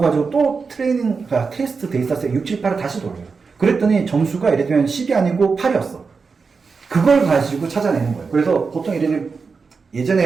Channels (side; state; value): left; quieter; 4.9 dB